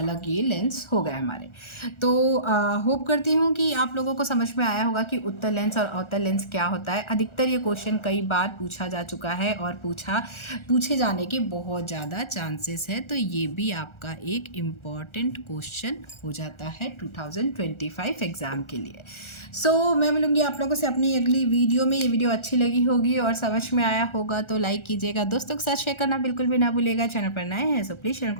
ये लेंस हो गए हमारे। तो होप करती हूँ कि आप लोगों को समझ में आया होगा कि उत्तल लेंस और अवतल लेंस क्या होता है। अधिकतर ये क्वेश्चन कई बार पूछा जा चुका है और पूछे जाने के बहुत ज़्यादा चांसेस है, तो ये भी आपका एक इम्पॉर्टेंट क्वेश्चन हो जाता है 2025 एग्ज़ाम के लिए। मैं मिलूँगी आप लोगों से अपनी अगली वीडियो में। ये वीडियो अच्छी लगी होगी और समझ में आया होगा तो लाइक कीजिएगा, दोस्तों के साथ शेयर करना बिल्कुल भी ना भूलिएगा। चैनल पर नए हैं प्लीज़ चैनल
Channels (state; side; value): late; right; 1.4 ms